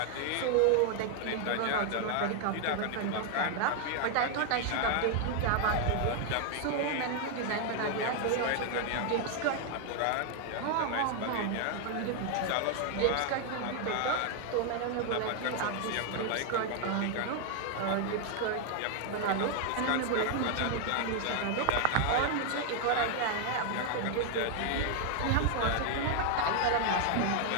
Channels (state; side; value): different; both; correlation 0.00